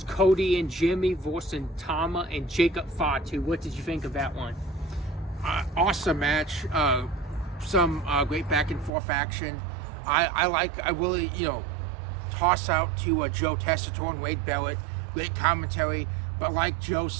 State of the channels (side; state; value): left; drops out; at 8.9 s